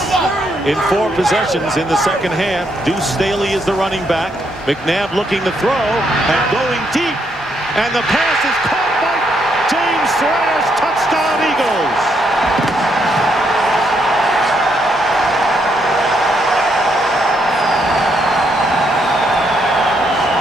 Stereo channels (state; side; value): normal; both; correlation 0.75